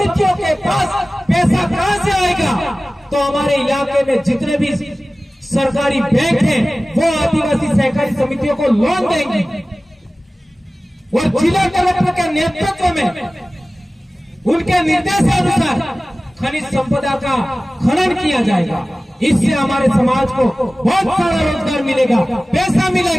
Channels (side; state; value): both; normal; correlation 0.97